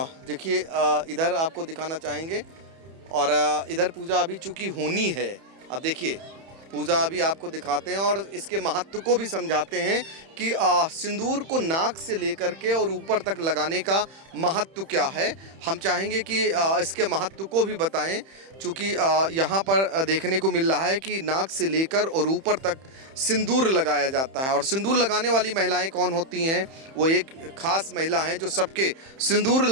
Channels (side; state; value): left; late; 31 ms